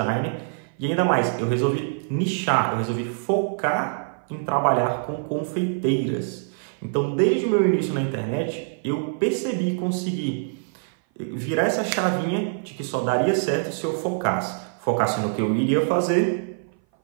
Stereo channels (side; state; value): left; silent; 58 dB below the other